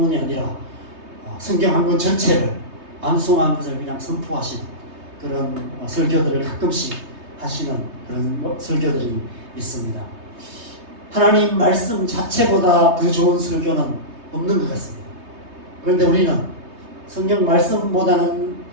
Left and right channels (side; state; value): left; late; 3.2 ms